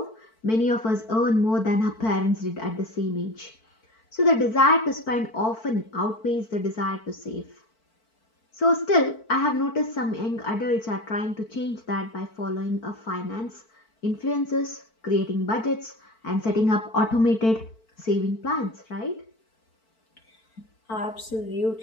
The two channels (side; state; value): right; late; 4.5 ms